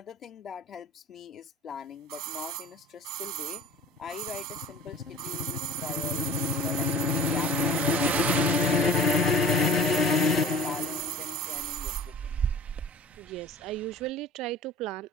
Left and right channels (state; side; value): normal; both; correlation 0.42